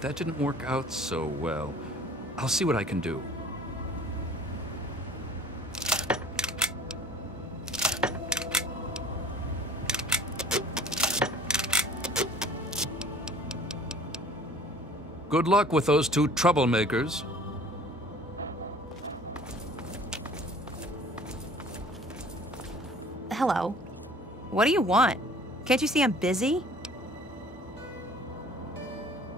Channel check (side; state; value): both; normal; correlation 0.49